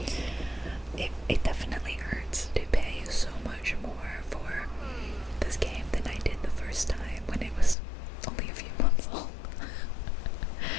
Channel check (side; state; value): right; drops out; at 7.8 s